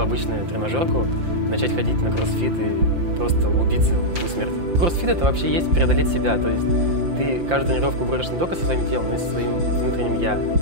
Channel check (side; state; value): left; late; 5.8 ms